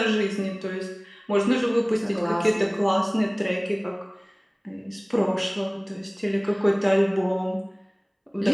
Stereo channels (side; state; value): both; identical; correlation 1.00